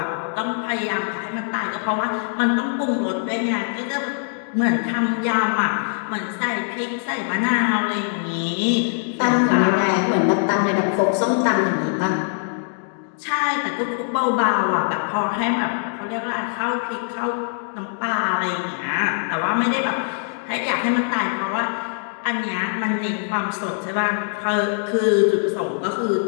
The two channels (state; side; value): silent; right; digital silence